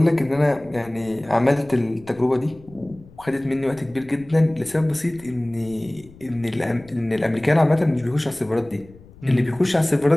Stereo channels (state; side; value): noise; left; rumble, 23 dB below the sound